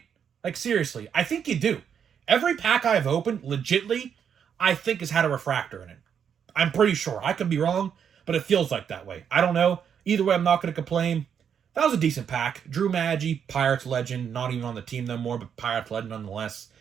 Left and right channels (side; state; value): left; quieter; 7.8 dB